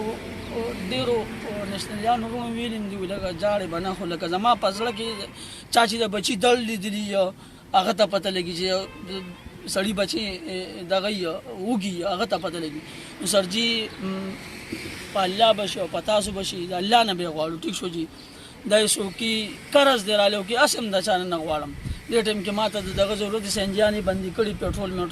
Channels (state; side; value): identical; both; correlation 1.00